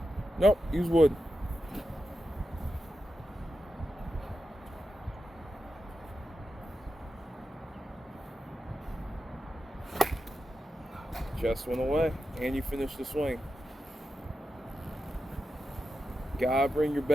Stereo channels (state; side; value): normal; both; correlation 0.89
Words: Nope, use wood. Chest went away, and you finished the swing. Gotta bring your